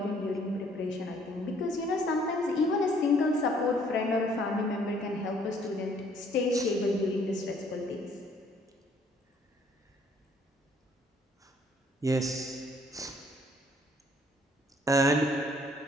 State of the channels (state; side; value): normal; both; correlation 0.62